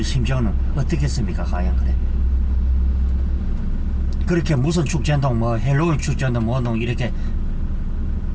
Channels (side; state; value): both; identical; correlation 1.00